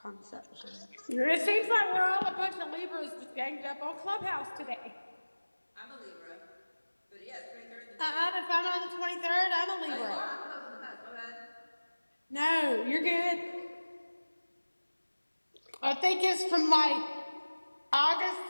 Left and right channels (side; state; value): both; inverted; correlation -1.00